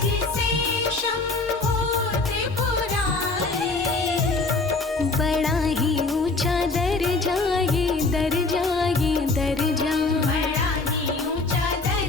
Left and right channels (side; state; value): right; quieter; 3.6 dB